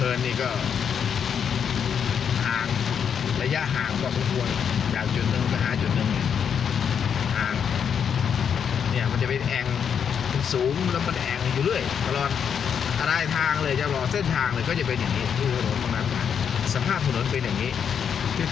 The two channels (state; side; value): quieter; right; 7.5 dB